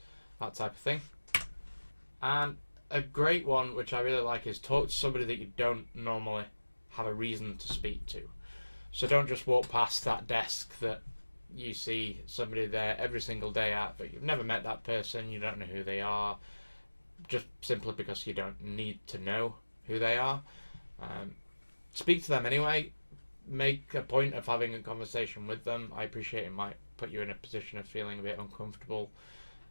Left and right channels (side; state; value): both; inverted; correlation -1.00